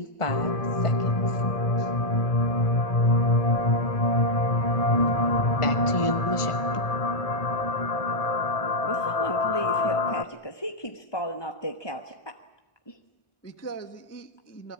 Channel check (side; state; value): right; late; 1.4 ms